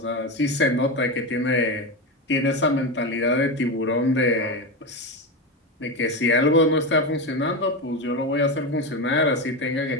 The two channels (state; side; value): normal; both; correlation 0.16